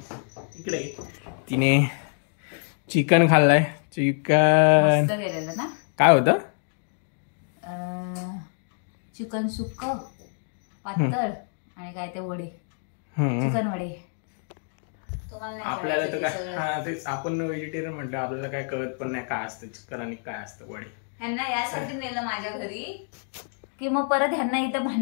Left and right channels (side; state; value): right; silent; 61 dB below the other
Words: इकडे तिने चिकन खाल्लाय. चिकन ना काय होतं? चिकन सुक्क पातळ आणि काय ते वडे, चिकन वडे. आपल्याला तर काय, हा तेच, आपण व्हेजिटेरियन म्हणतो, आपल्याला काय कळत पण नाही काय असतं चिकन आणि काय असतं वडे. ह्यांना यासाठी नेलं माझ्या घरी की मग परत ह्यांना इथं